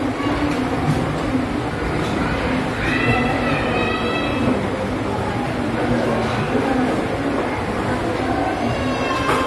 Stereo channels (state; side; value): identical; both; correlation 1.00